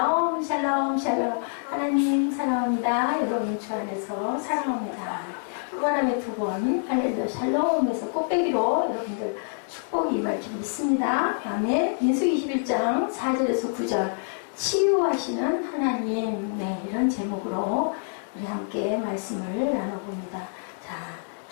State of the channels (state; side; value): silent; right; digital silence